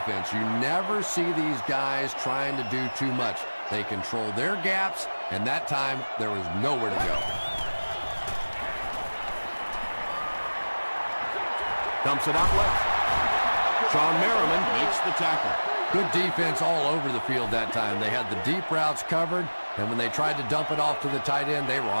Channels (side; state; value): both; inverted; correlation -1.00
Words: You never see these guys trying to do too much. They control their gaps, and that time there was nowhere to go. Dumps it out left. Sean Merriman makes the tackle. Good defense all over the field that time. They had the deep routes covered, and when they tried to dump it off to the tight end, they were